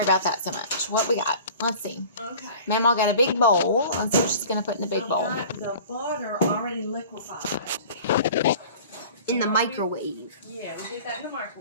about that so much. What we got? Let's see. Okay. Mamaw got a big bowl. Let's see what she's gonna put in the big bowl. I've got the butter already liquefied. In the microwave. Yeah, we did that in the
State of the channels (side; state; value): both; inverted; correlation -0.43